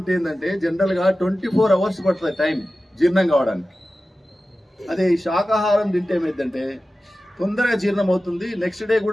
ఏంటంటే జనరల్గా 24 hours పడుతుంది టైం జీర్ణం కావడానికి. అదే ఈ శాకాహారం తింటే ఏమైందంటే తొందరగా జీర్ణం అవుతుంది, నెక్స్ట్ డే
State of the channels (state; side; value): normal; both; correlation 0.95